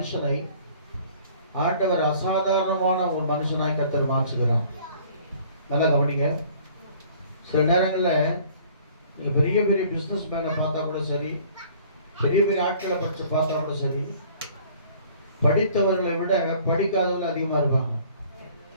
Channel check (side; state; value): both; inverted; correlation -0.54